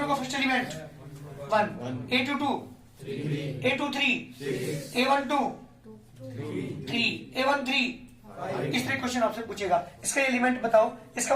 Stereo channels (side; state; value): both; identical; correlation 1.00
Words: का first element 1, A22 A23 A12 3 A13। इस तरह क्वेश्चन आपसे पूछेगा, इसका एलिमेंट बताओ, इसका